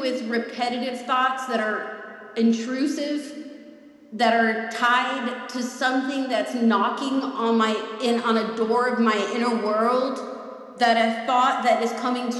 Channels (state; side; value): identical; both; correlation 1.00